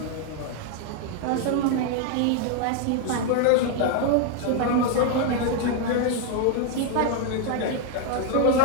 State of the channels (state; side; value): different; both; correlation 0.01